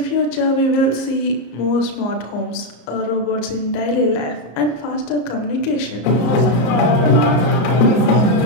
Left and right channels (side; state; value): right; late; 34 ms